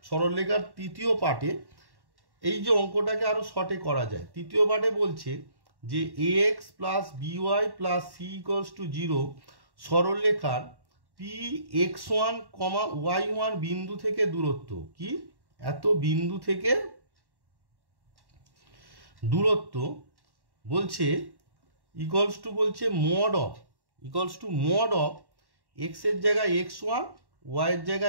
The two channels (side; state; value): left; late; 1.1 ms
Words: সরলরেখার তৃতীয় পার্টে এই যে অঙ্কটাকে আরো শর্টে করা যায়। তৃতীয় পার্টে বলছে যে ax + by + c = 0 সরলরেখার px1, y1 বিন্দু থেকে দূরত্ব কি এত বিন্দু থেকে দূরত্ব বলছে ইকুয়ালস টু বলছে mod of x এর জায়গায় x1, y এর